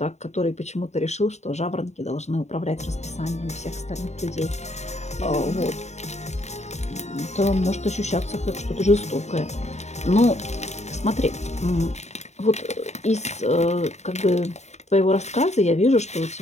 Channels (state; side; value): late; right; 0.32 ms